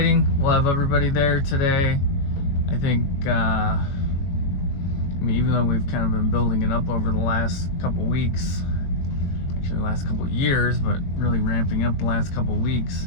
We'll have everybody there today. I think, even though we've kind of been building it up over the last couple weeks, actually the last couple years, but really ramping up the last couple weeks,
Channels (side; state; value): right; late; 21 ms